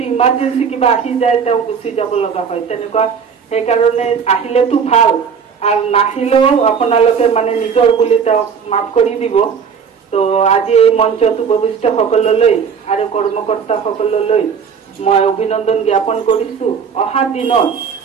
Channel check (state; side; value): quieter; left; 6.5 dB